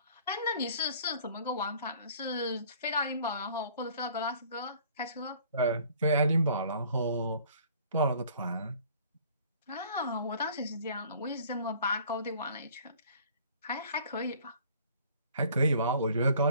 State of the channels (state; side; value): inverted; both; correlation -0.53